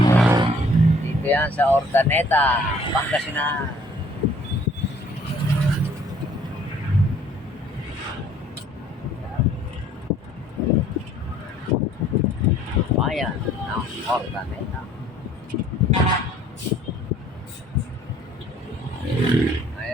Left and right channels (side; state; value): both; normal; correlation 0.57